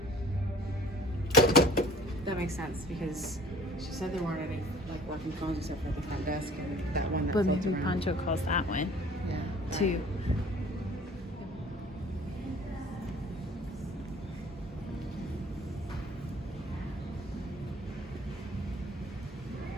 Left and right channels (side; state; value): both; normal; correlation 0.51